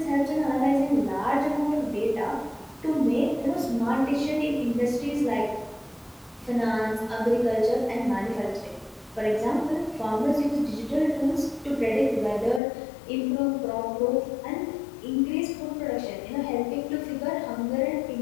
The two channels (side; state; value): right; drops out; at 12.6 s